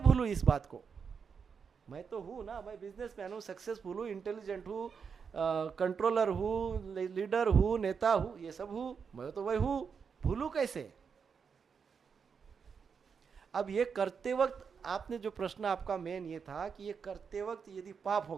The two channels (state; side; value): quieter; left; 6.2 dB